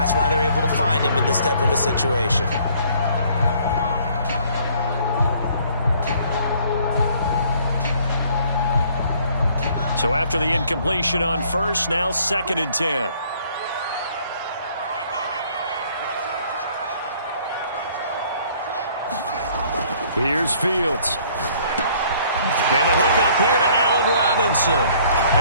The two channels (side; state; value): both; inverted; correlation -0.60